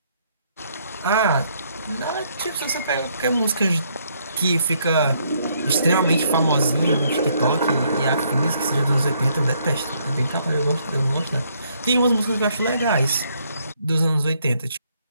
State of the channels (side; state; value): both; inverted; correlation -0.71